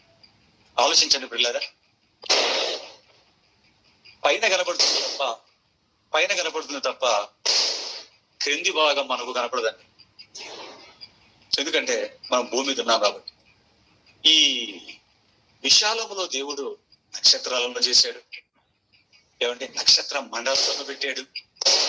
ఆలోచించండి పిల్లరా. పైన కనపడుతుంది తప్ప క్రింది భాగం మనకు కనపడదండి. ఎందుకంటే మనం భూమి మీద ఉన్నాం కాబట్టి. ఈ విశాలములో దేవుడు నక్షత్రాలను చేశాడు. ఏమంటే నక్షత్ర మండలాలను పెట్టాడు.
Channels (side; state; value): both; identical; correlation 1.00